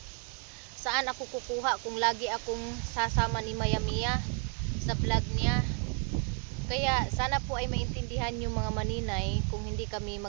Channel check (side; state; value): left; quieter; 39.5 dB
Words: Saan ako kukuha kung lagi akong sasama ni Maya Mia sa vlog niya? Kaya sana po ay maintindihan yung mga maninay, kung hindi kami